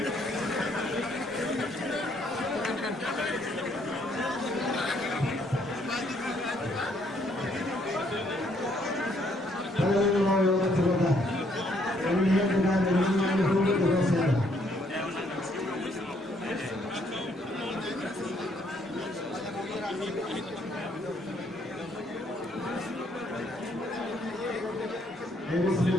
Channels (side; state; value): both; normal; correlation 0.68